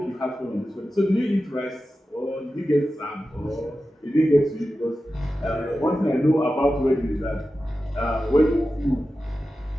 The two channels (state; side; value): normal; both; correlation 0.93